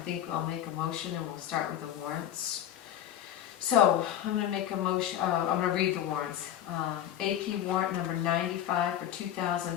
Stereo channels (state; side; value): quieter; right; 11.2 dB